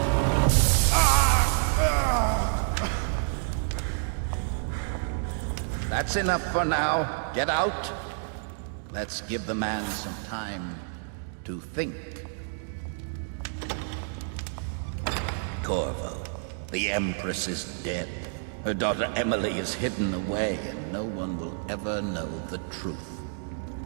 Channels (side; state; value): left; silent; digital silence